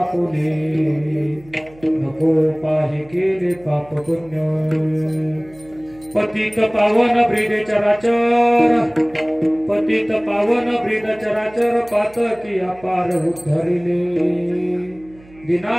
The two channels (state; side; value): noise; right; hum, 25 dB below the sound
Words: नको पाहे केले पाप पुण्य पतित पावन ब्रीद चराचर पतित पावन ब्रीद चराचर पातकी अपार उद्धरिले